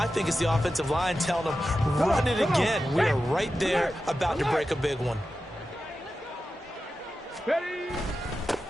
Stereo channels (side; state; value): both; normal; correlation 0.92